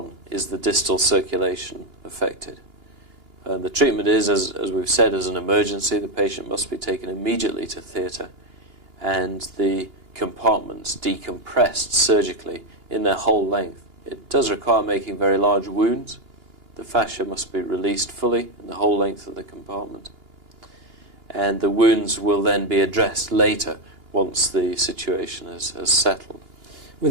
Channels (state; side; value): late; left; 2.9 ms